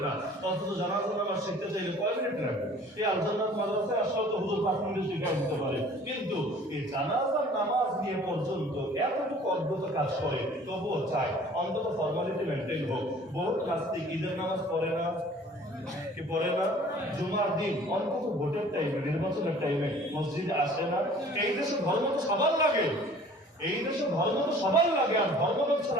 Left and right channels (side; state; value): both; normal; correlation 0.50